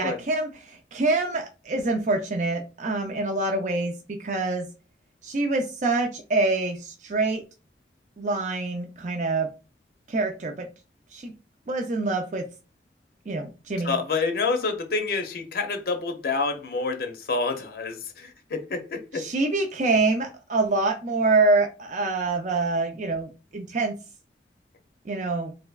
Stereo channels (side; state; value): both; normal; correlation 0.11